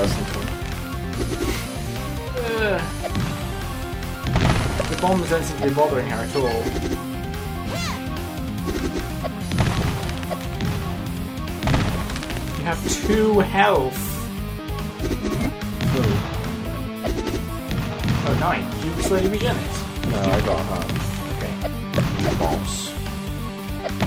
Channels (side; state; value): both; identical; correlation 1.00